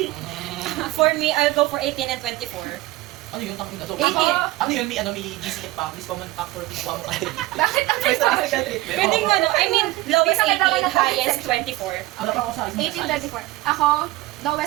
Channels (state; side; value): quieter; left; 18.9 dB